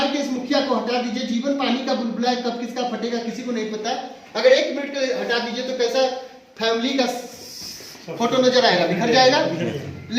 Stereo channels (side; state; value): both; identical; correlation 1.00